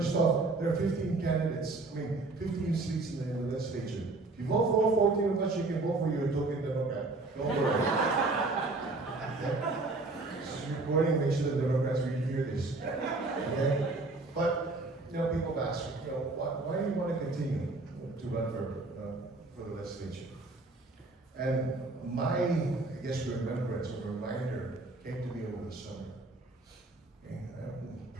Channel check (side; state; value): left; quieter; 3.3 dB